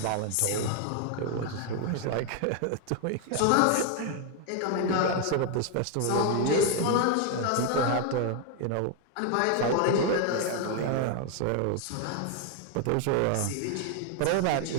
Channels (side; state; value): both; different; correlation 0.01